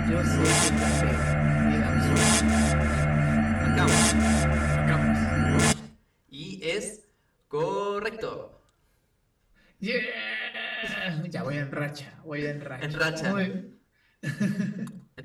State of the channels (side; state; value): both; identical; correlation 1.00